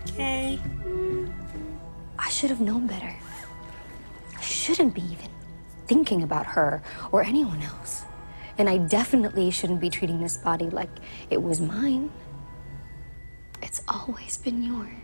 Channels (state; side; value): inverted; both; correlation -1.00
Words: Kay. I should have known better. I shouldn't be even thinking about her or anyone else. And I definitely shouldn't be treating this body like it was mine. It's always been yours.